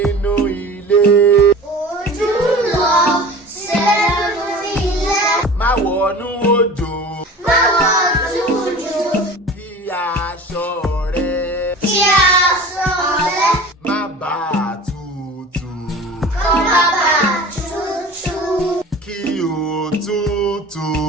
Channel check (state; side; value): normal; both; correlation 0.38